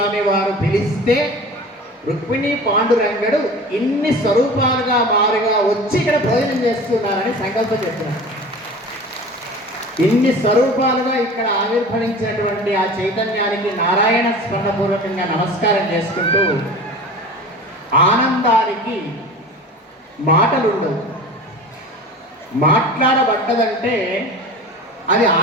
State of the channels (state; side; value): normal; both; correlation 0.37